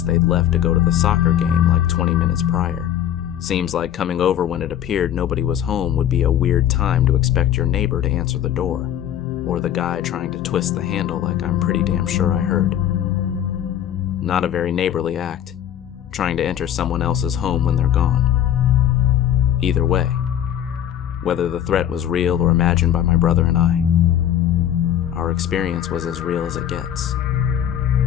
they'd left to go to the soccer game like 20 minutes prior. Seems like coming over when it appeared nobody was home would be a weird time to expect your neighbor to answer the door, or the guy trying to twist the handle like I'm pretty damn sure I heard. Not a very neighborly act, trying to enter someone else's home when they're gone. Either way, whether the threat was real or imagined by my brother and I, our experience was as real as it gets,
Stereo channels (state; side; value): quieter; right; 10.6 dB